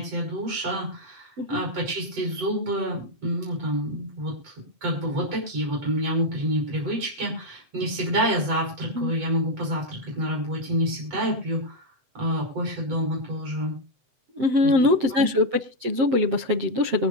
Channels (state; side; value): late; left; 7.9 ms